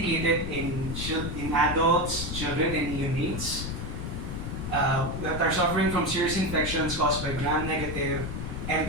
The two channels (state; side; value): noise; left; rumble, 5 dB below the sound